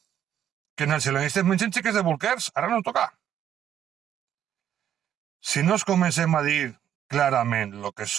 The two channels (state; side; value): quieter; left; 10.2 dB